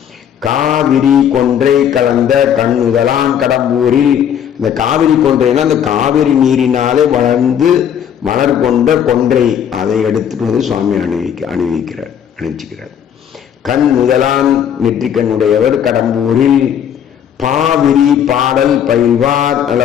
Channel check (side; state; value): right; quieter; 9.0 dB